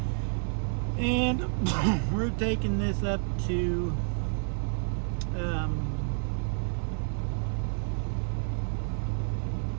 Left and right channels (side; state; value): left; silent; 58 dB below the other